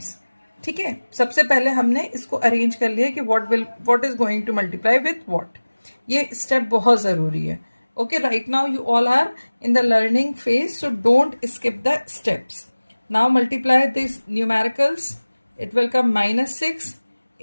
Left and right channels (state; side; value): inverted; both; correlation -1.00